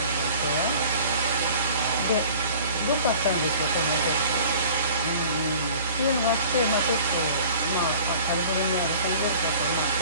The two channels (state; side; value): inverted; both; correlation -0.46